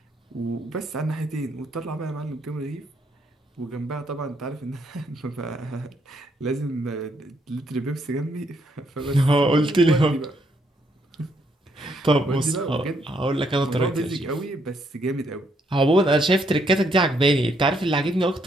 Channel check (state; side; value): normal; both; correlation 0.73